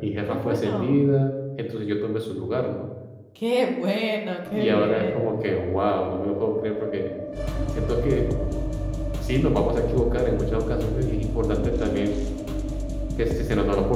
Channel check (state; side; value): identical; both; correlation 1.00